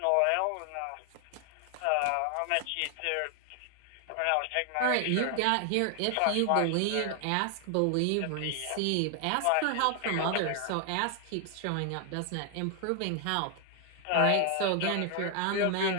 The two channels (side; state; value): both; different; correlation 0.00